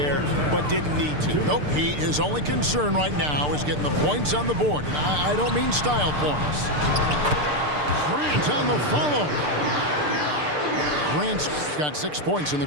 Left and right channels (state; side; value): late; left; 6.7 ms